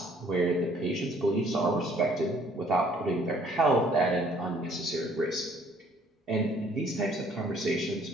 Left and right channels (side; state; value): both; normal; correlation 0.60